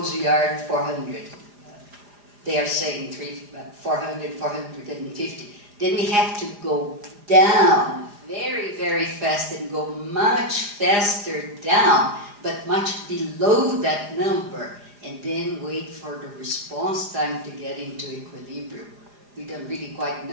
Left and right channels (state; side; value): late; left; 4.9 ms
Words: we are at 400. They are saying 400, 450. Then we have to go down very, very fast and go much faster down, but much below that number, and then wait for the response time to get into equilibrium. We don't really quite